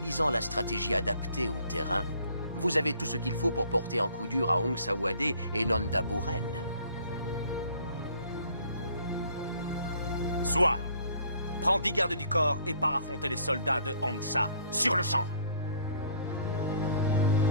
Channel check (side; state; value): both; inverted; correlation -0.59